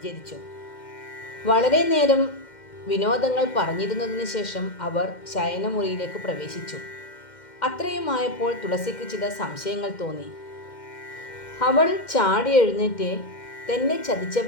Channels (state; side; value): late; right; 2.1 ms